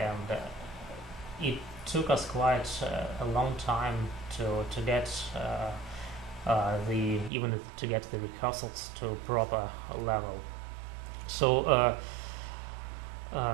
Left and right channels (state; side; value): drops out; left; at 7.3 s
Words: it took us quite a long time to get even to get the rehearsals to a proper level. So